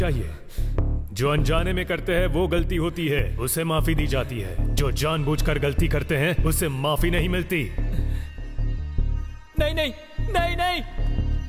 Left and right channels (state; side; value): identical; both; correlation 1.00